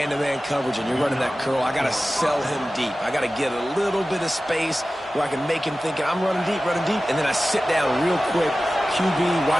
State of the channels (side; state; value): both; normal; correlation 0.96